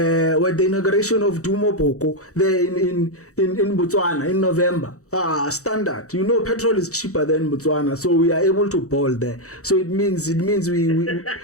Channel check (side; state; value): right; late; 0.65 ms